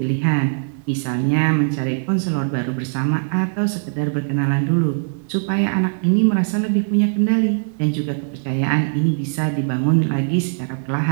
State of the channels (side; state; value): left; silent; 66 dB below the other